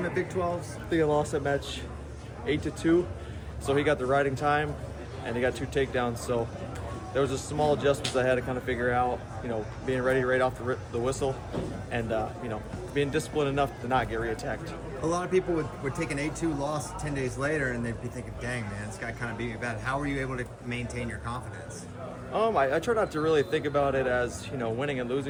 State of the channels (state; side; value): identical; both; correlation 1.00